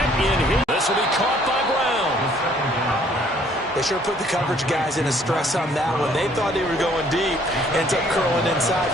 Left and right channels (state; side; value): normal; both; correlation 0.61